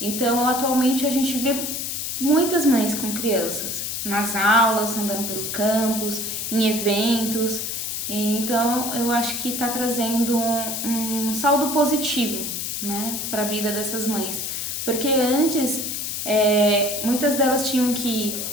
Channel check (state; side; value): noise; left; hiss, 3 dB below the sound